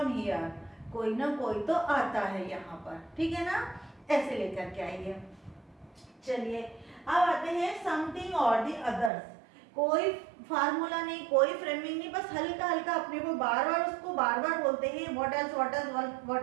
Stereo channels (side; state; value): left; drops out; at 9.1 s